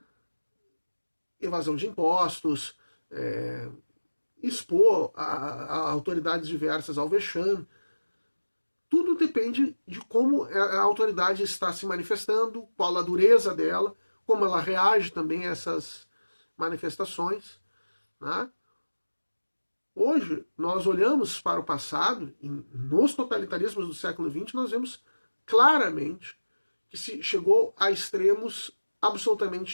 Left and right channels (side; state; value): both; inverted; correlation -1.00